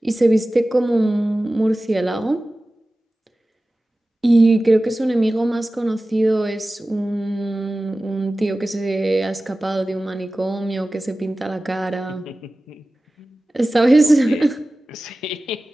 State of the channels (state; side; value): normal; both; correlation 0.96